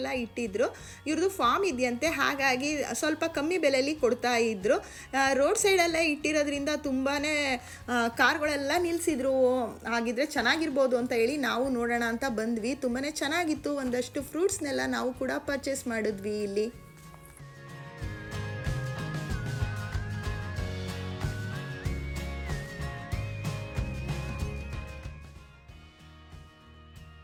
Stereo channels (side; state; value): both; identical; correlation 1.00